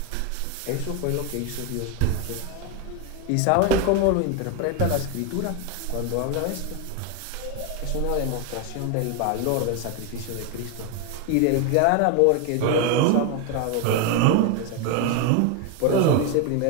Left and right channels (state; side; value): different; both; correlation 0.01